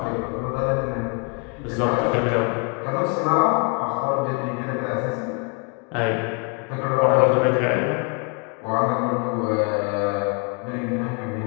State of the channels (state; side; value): quieter; right; 33.8 dB